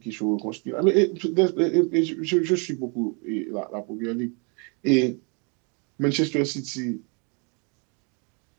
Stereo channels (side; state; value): left; quieter; 35.2 dB